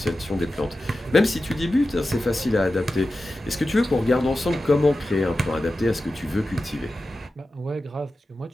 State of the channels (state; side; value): normal; both; correlation 0.93